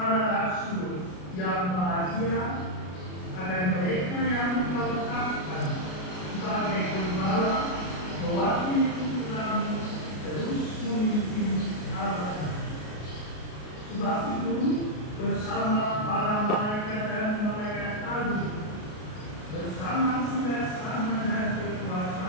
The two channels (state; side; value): late; right; 33 ms